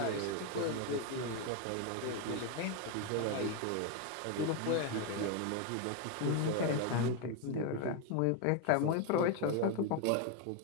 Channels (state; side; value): different; both; correlation 0.01